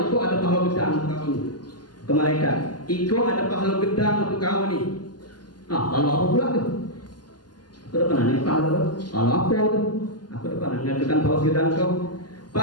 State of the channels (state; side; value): late; right; 0.70 ms